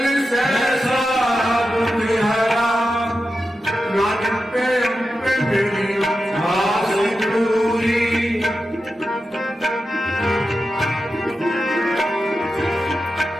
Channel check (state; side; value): normal; both; correlation 0.91